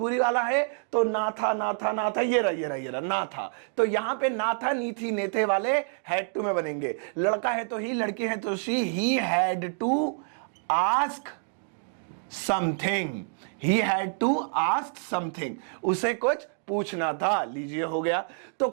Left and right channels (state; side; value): silent; left; digital silence